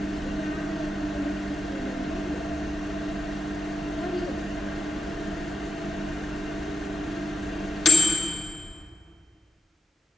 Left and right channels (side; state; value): both; normal; correlation 0.87